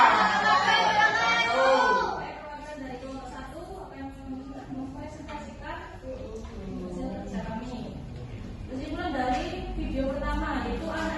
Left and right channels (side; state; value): both; identical; correlation 1.00